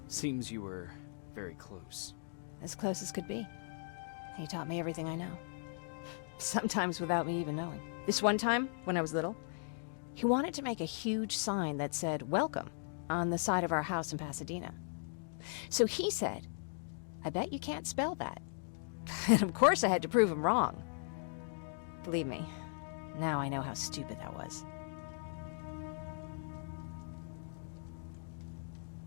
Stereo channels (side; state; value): right; silent; digital silence